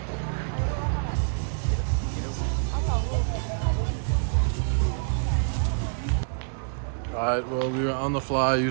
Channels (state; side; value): silent; left; digital silence